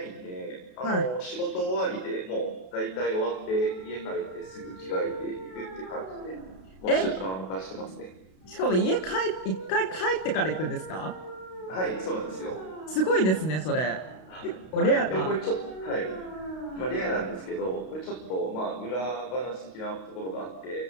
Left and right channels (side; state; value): right; late; 32 ms